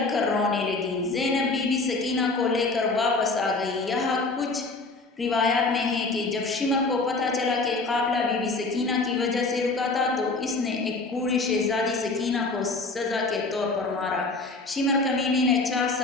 کر رونے لگی۔ زینب بی بی سکینہ کو لے کر واپس آ گئی۔ یہاں کچھ روایات میں ہے کہ جب شمر کو پتہ چلا کہ قافلہ بی بی سکینہ کی وجہ سے رکا تھا تو اس نے ایک بوڑھی شہزادی سکینہ کو سزا کے طور پر مارا۔ شمر کمینے نے 4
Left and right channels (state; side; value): quieter; right; 3.5 dB